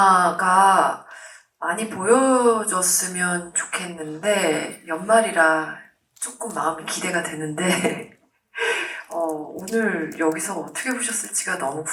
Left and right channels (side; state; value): both; identical; correlation 1.00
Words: 많이 보여줬으면 좋겠는데 연말이라 조금 마음이 기대가 되는데 오늘 여기서 어떻게 보셨을지가 너무